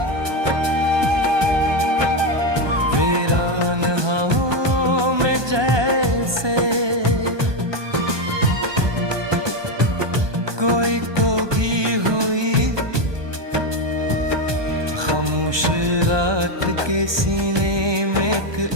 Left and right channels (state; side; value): late; left; 1.2 ms